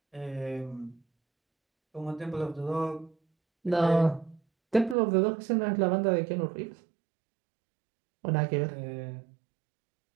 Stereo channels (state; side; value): drops out; left; at 5.0 s